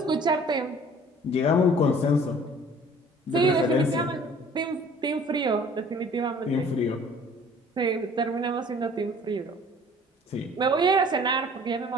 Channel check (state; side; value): normal; both; correlation 0.51